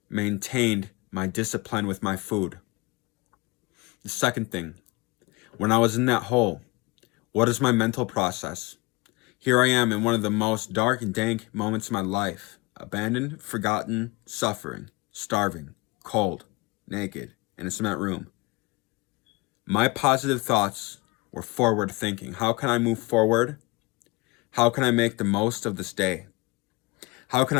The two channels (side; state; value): right; quieter; 24.5 dB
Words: maintained my discipline with my food. The second thing, when I was in that hole, what is my mental process? Here I am in one of the most dark and dank moments of my life. Abandoned, forgotten, suffering, starving, cold, naked, in a cement room. My positive thoughts were forward thinking. How can I move forward? How can I make the most of this day? How can